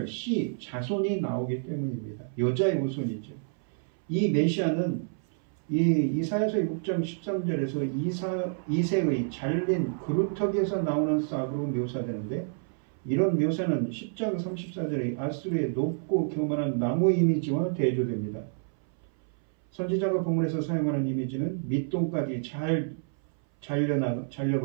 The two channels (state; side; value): silent; left; 59 dB below the other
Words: 자손이 나오기 때문입니다. 여자의 후손이죠. 이 메시아는 이 이사야서 6장 13절에서 이새의 잘린 그루터기에서 나오는 싹으로 묘사되는데, 이런 묘사는 10장 34절의 아수르의 높고 교만한 나무 이미지와 대조됩니다. 선지자가 본문에서 사용하는 이미지는 밑동까지 잘